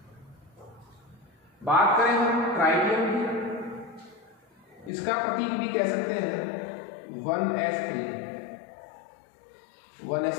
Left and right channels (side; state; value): right; drops out; at 4.9 s